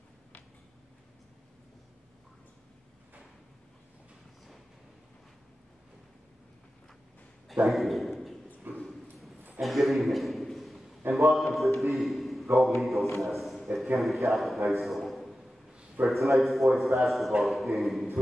Thank you. And good evening. And welcome to the Golden Eagles Nest at Kennedy Catholic High School for tonight's boys basketball game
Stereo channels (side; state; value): both; normal; correlation 0.93